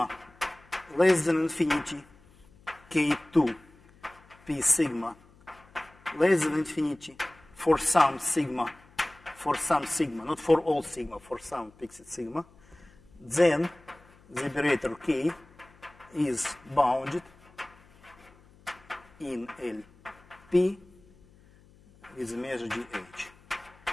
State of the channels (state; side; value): noise; left; hum, 27 dB below the sound